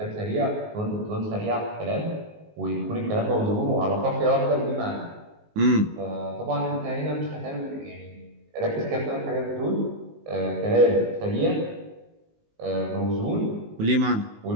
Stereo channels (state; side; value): late; left; 19 ms